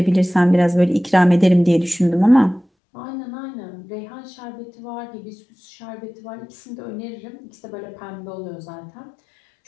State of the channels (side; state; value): right; drops out; at 2.7 s